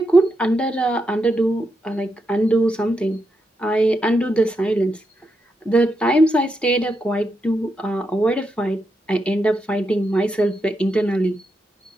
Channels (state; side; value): normal; both; correlation 0.84